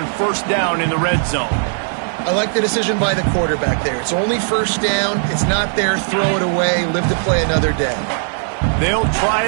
first down in the red zone. I like the decision by the quarterback there. It's only first down. It's not there. Throw it away. Live to play another day. They'll try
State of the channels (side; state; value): left; silent; digital silence